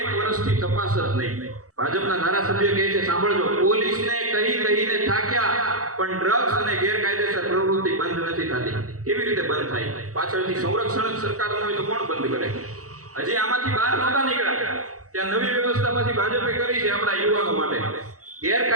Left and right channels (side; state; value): left; late; 0.66 ms